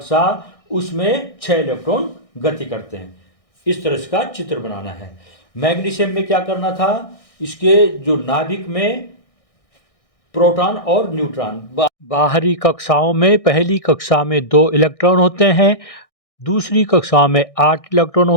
उसमें 6 इलेक्ट्रॉन गति करते हैं। इस तरह का चित्र बनाना है। मैग्नीशियम में क्या करना था, इसके जो नाभिक में प्रोटॉन और न्यूट्रॉन, बाहरी कक्षाओं में पहली कक्षा में 2 इलेक्ट्रॉन होते हैं, दूसरी कक्षा में 8 इलेक्ट्रॉन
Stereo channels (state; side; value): late; right; 1.6 ms